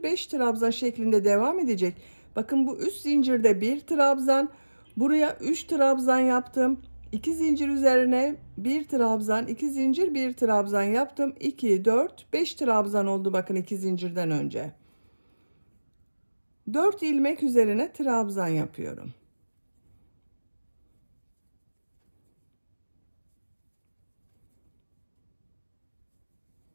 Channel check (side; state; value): both; inverted; correlation -1.00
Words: 5 trabzan şeklinde devam edecek. Bakın bu üst zincirde bir trabzan, buraya 3 trabzan yaptım. 2 zincir üzerine bir trabzan, 2 zincir, bir trabzan yaptım. 2, 4, 5 trabzan oldu bakın 2 zincirden önce. 4 ilmek üzerine trabzan yapıyorum.